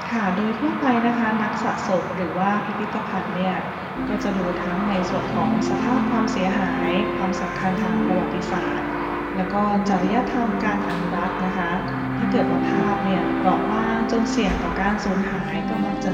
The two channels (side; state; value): both; identical; correlation 1.00